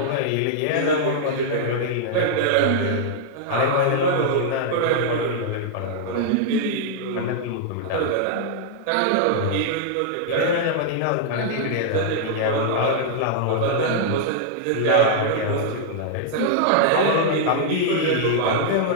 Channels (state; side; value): different; both; correlation -0.01